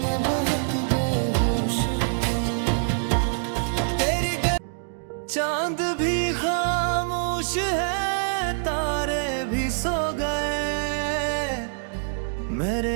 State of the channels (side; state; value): left; silent; digital silence